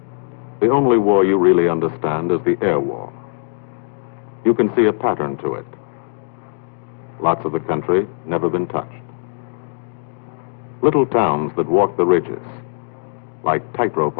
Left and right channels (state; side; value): silent; right; digital silence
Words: The only war you really understand is the air war. You can see a pattern to it. Lots of the country never been touched. Little towns that walk the ridges, like tightrope